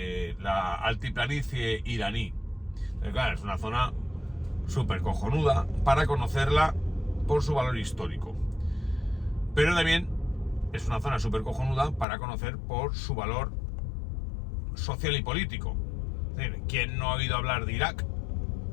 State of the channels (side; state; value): right; drops out; at 12.1 s